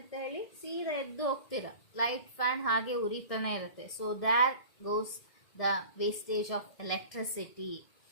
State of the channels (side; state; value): right; late; 1.6 ms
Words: ಹೇಳಿ ಸೀದಾ ಎದ್ದು ಹೋಗ್ತೀರ, ಲೈಟ್ ಫ್ಯಾನ್ ಹಾಗೆ ಉರಿತಾನೆ ಇರುತ್ತೆ. So that goes the wastage of electricity.